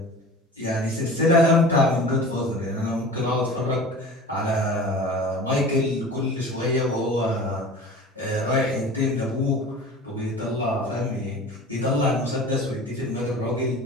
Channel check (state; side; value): normal; both; correlation 0.38